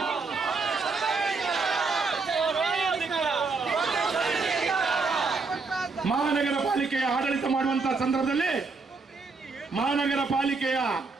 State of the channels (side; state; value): left; quieter; 4.2 dB